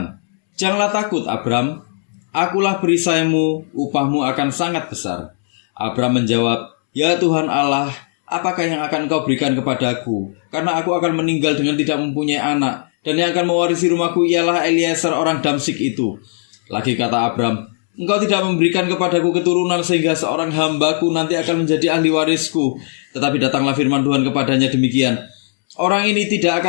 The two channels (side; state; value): right; silent; 68 dB below the other